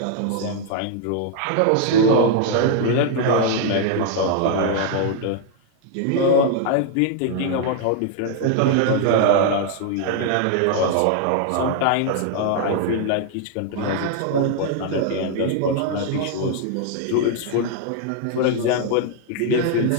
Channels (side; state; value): both; different; correlation 0.00